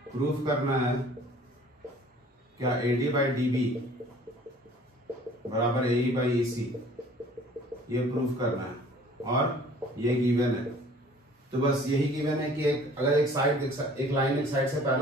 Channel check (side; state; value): both; normal; correlation 0.51